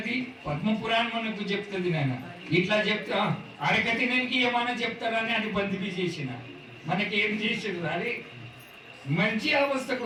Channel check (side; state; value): both; identical; correlation 1.00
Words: పద్మపురాణం మనకు చెప్తుంది నాయన ఇట్లా చెప్తా అడగతినానికి ఏమైనా చెప్తారని అది బందిపి చేసిన మనకి ఏం చేసాడు అరే మంచి